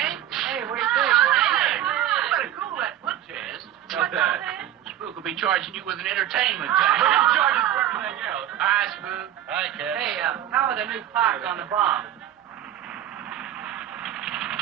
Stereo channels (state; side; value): quieter; left; 11.9 dB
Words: Hey, what do you think? Hey, you better cool that foot chest. What's that? Spook will be charging you with an entertainment tax. We're gonna charge us for everything else. Hi, Spook. Hi, Cat. Hey, how are the new parts on the bomb?